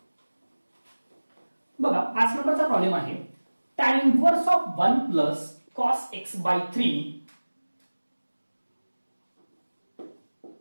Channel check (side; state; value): both; inverted; correlation -1.00